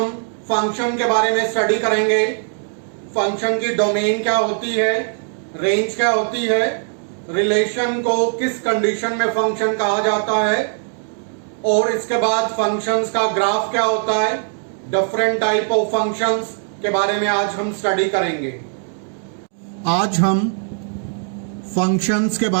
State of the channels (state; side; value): silent; left; 60 dB below the other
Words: फंक्शन के बारे में स्टडी करेंगे। फंक्शन की डोमेन क्या होती है, रेंज क्या होती है, रिलेशन को किस कंडीशन में फंक्शन कहा जाता है, और इसके बाद फंक्शंस का ग्राफ क्या होता है, डिफरेंट टाइप ऑफ फंक्शंस के बारे में आज हम स्टडी करेंगे। आज हम फंक्शंस के